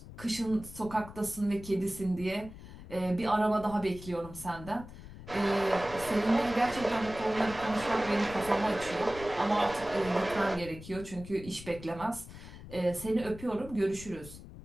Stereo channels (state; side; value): noise; left; rumble, 15 dB below the sound